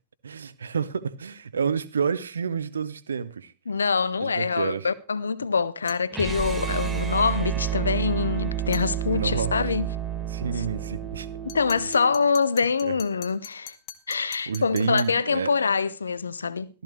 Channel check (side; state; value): both; inverted; correlation -0.68